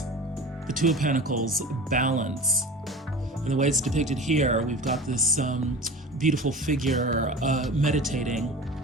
the Two of Pentacles, balance. And the way it's depicted here, we've got this beautiful figure meditating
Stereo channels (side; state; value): both; normal; correlation 0.35